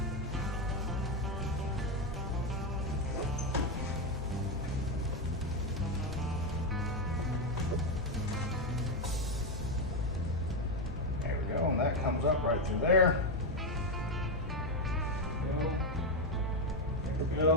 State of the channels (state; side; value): normal; both; correlation 0.07